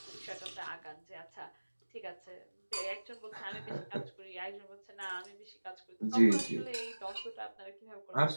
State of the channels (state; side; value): inverted; both; correlation -1.00